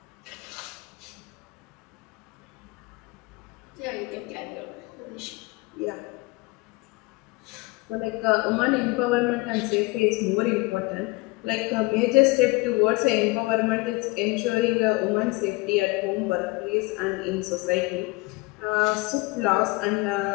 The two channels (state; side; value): quieter; right; 24.6 dB